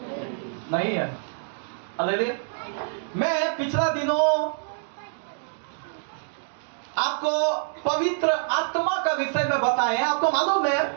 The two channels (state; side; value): silent; left; digital silence